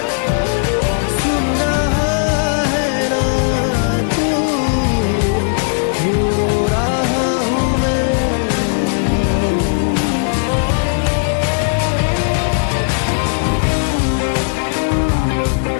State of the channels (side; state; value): right; silent; digital silence